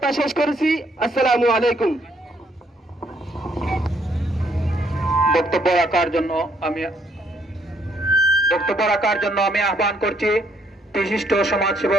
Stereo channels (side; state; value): both; normal; correlation 0.69